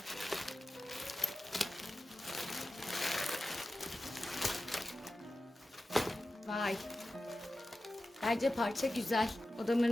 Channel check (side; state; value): both; normal; correlation 0.94